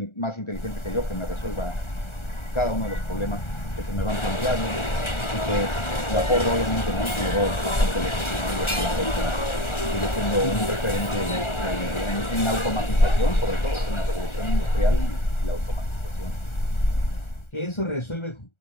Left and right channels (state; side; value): late; right; 1.4 ms